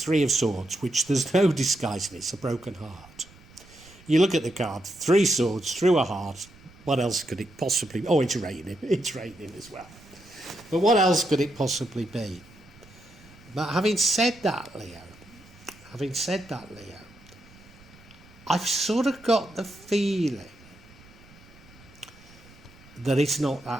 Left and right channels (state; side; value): noise; right; rumble, 24 dB below the sound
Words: Three of Swords, which there's no disguising. It's a broken heart. You look at the card, 3 swords through a heart. What else could it possibly... Oh, it's raining. It's raining as well. But what else could it possibly be? But having said that, Leo, I've sort of got the feeling that it's not